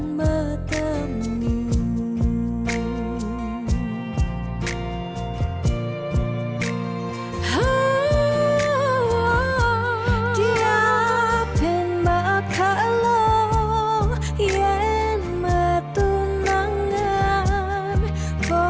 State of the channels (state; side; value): identical; both; correlation 1.00